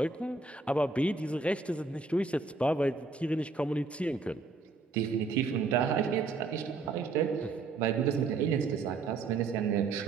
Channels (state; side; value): quieter; left; 4.1 dB